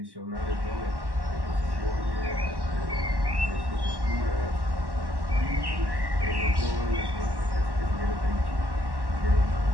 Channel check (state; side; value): late; left; 1.1 ms